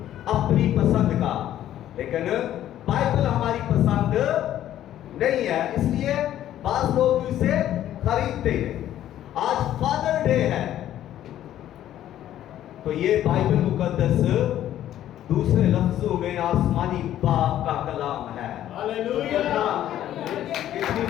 अपनी पसंद का, लेकिन बाइबल हमारी पसंद नहीं है, इसलिए बास लोग इसे खरीदते हैं। आज फादर डे है तो ये बाइबल मुकद्दस दूसरे लफ्जों में आसमानी बाप का कलाम है। हालेलुया! कितनी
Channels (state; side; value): quieter; right; 12.1 dB